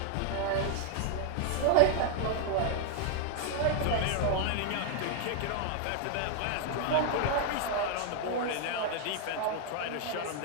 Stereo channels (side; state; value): both; different; correlation 0.00